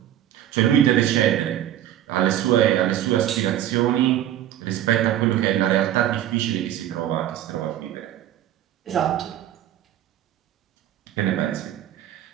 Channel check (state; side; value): quieter; left; 11.9 dB